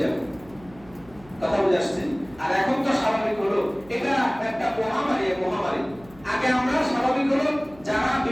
যাবে। কথা বুঝে আসছে? আর এখন তো স্বাভাবিক হলো এটা একটা মহামারী। আগে আমরা স্বাভাবিক হলো যারা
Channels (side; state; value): right; noise; hum, 24 dB below the sound